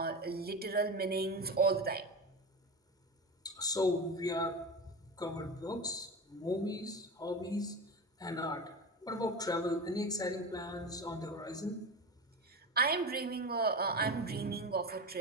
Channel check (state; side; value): normal; both; correlation 0.24